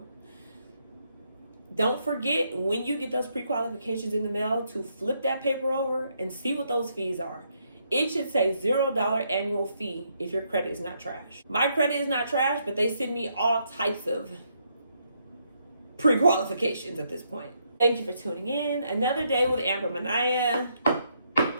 Don't forget, when you get those pre-qualifications in the mail, to flip that paper over and see what those fees are. It should say $0 annual fee if your credit is not trash. My credit is not trash, but they send me all types of pre-qualifications at this point. Thank you for tuning in. Another day with Amber Manaya.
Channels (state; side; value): inverted; both; correlation -0.76